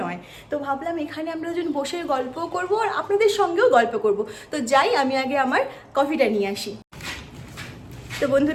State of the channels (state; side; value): identical; both; correlation 1.00